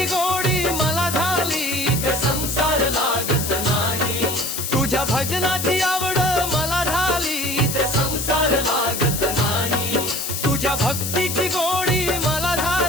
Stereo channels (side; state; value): left; noise; hiss, 3 dB below the sound